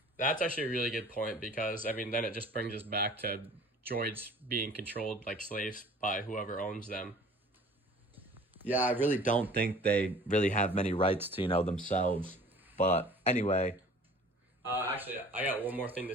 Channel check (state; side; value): normal; both; correlation 0.48